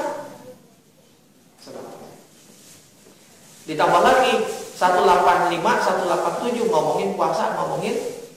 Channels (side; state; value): both; identical; correlation 1.00